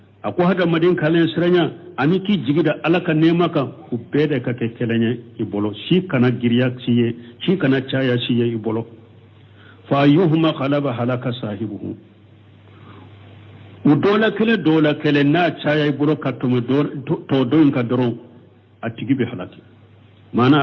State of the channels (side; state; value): both; identical; correlation 1.00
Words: ako hada madin kalen siranya ani ki jigida alaka nema ka ubede ka kekelenya ibolo shi kana giriya siye shi kana chaya siye ibolo fa yuhma qalaba halaka sahibuhu udola kele na chaya ibolo katume to doin ka doron atigibe halaki mana